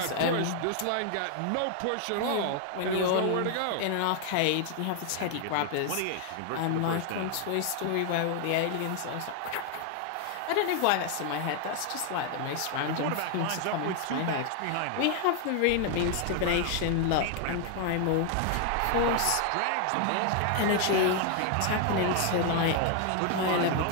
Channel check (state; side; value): different; both; correlation 0.00